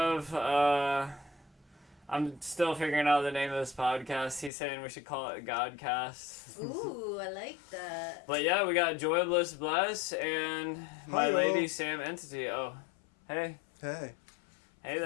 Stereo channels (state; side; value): drops out; right; at 4.5 s